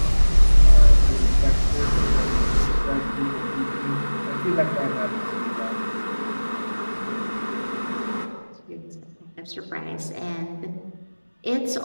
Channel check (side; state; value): both; inverted; correlation -1.00